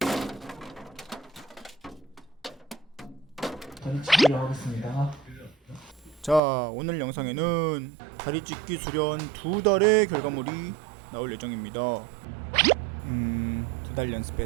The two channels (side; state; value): left; drops out; at 6.4 s